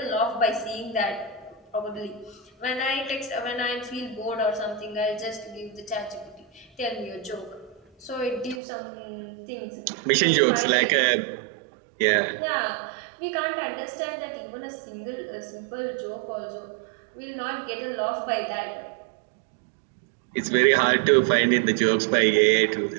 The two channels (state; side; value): drops out; left; at 8.6 s